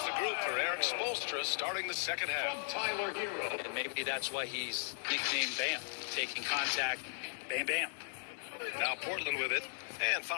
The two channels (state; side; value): silent; right; digital silence